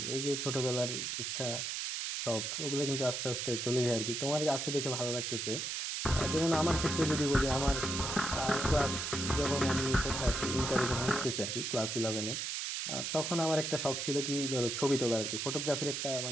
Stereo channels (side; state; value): right; noise; hiss, 2 dB below the sound